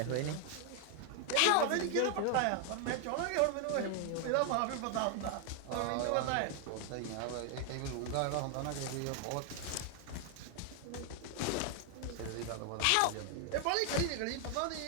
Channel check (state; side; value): different; both; correlation 0.00